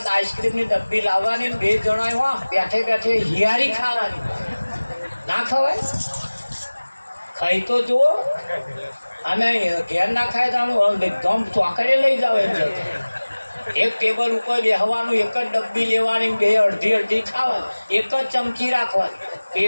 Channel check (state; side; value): inverted; both; correlation -1.00